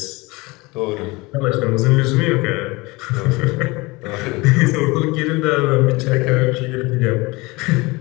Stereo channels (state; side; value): quieter; right; 23.7 dB